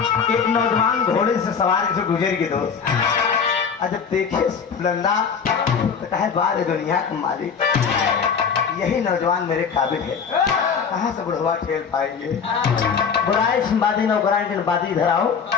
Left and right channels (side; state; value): right; quieter; 6.3 dB